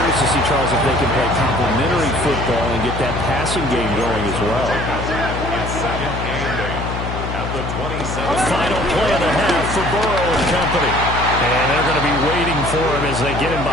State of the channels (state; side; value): noise; left; hum, 5 dB below the sound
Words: to see, Charles, if they can play complementary football and get that passing game going as well. Final play of the half for Burrow and company. And they're going to be waiting for him as they get him